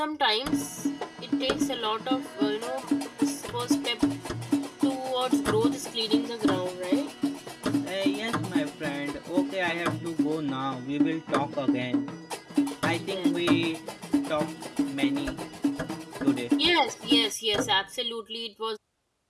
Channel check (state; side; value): identical; both; correlation 1.00